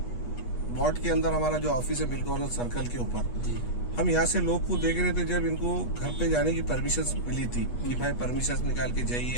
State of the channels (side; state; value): right; late; 8.3 ms